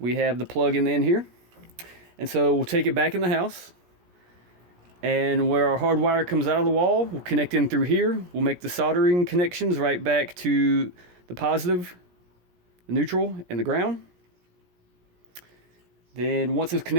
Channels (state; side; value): late; left; 17 ms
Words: have the plug in the end here. And so we'll take it back in the house, and where our hard wire comes out of the wall, we'll connect in through here. We'll make the soldering connections right back to the positive, the neutral, and the ground. Then once those